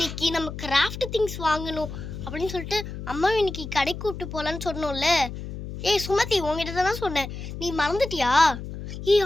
நம்ம கிராஃப்ட் திங்ஸ் வாங்கணும் அப்படின்னு சொல்லிட்டு அம்மா இன்னைக்கு கடைக்கு கூப்பிட்டு போகலான்னு சொன்னோம்ல. ஏய் சுமதி, உங்ககிட்ட தானே சொன்னேன், நீ மறந்துட்டியா? ஏய்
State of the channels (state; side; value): noise; left; hum, 9 dB below the sound